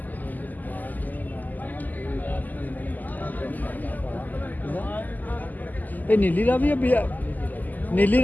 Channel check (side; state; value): right; late; 0.083 ms